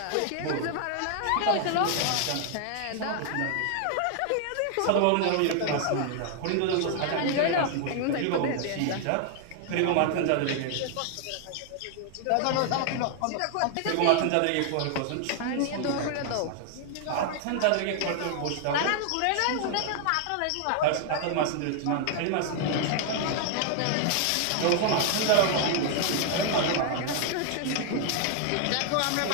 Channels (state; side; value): different; both; correlation 0.00